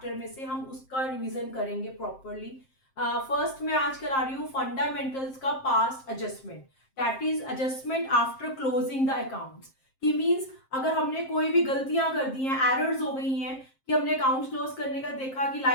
में से हम उसका रिवीजन करेंगे प्रॉपरली। फर्स्ट मैं आज करा रही हूँ फंडामेंटल्स का past adjustment, that is adjustment after closing the accounts. की मीन्स अगर हमने कोई भी गलतियां कर दी हैं, एरर्स हो गई हैं कि हमने अकाउंट क्लोज करने का देखा कि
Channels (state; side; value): late; right; 7.6 ms